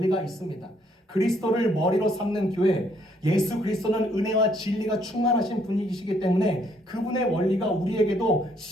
있습니다. 그리스도를 머리로 삼는 교회, 예수 그리스도는 은혜와 진리가 충만하신 분이시기 때문에 그분의 원리가 우리에게도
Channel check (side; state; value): both; normal; correlation 0.68